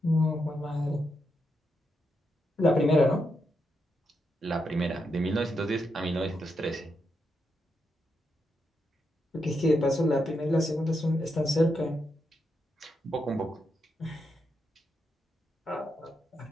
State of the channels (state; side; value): normal; both; correlation 0.83